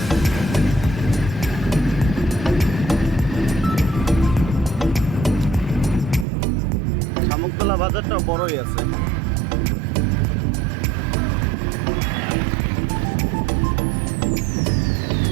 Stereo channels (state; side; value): drops out; left; at 6.2 s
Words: শামুকতলা বাজারটা বড়ই আছে।